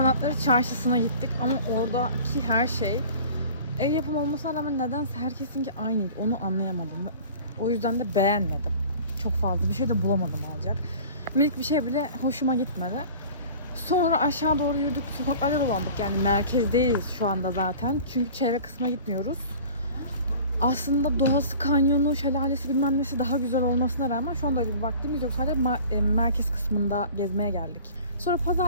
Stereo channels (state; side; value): inverted; both; correlation -0.43